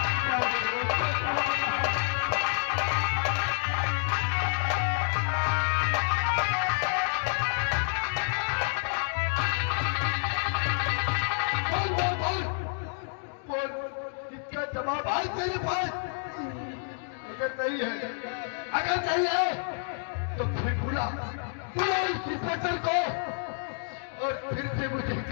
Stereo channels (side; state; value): right; silent; 59 dB below the other